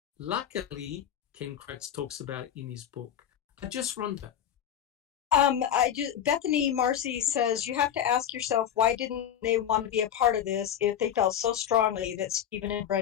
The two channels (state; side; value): quieter; right; 9.9 dB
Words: luckily, Ken Kratz talks about it in his book. I just wonder. Bethany Marcy says, you have to ask yourself, why didn't they want to be a part of this if they felt so strongly that Stephen and